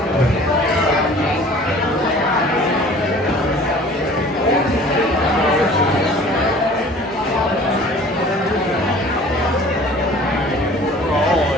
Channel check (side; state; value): both; normal; correlation 0.48